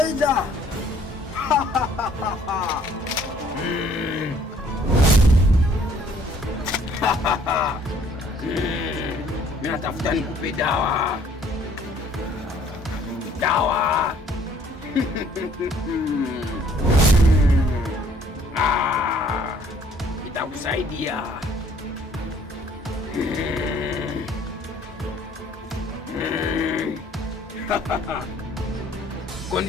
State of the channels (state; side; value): normal; both; correlation 0.59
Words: Mimi natafuta nikupe dawa. Dawa. Itakusaidia.